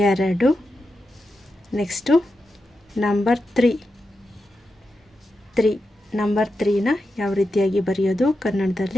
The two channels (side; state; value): both; normal; correlation 0.89